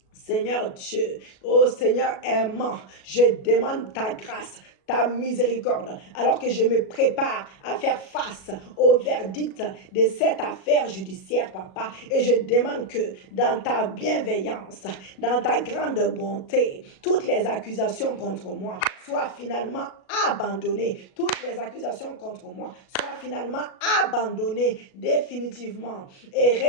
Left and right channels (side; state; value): right; late; 37 ms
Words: Seigneur Dieu, oh Seigneur aimant, je demande ta grâce, ta miséricorde, alors que je me prépare à faire face au verdict de cette affaire judiciaire, papa. Et je demande que dans ta bienveillance, dans ta grande bonté, toutes les accusations contre moi soient finalement abandonnées. Toutes les accusations contre moi soient finalement abandonnées définitivement et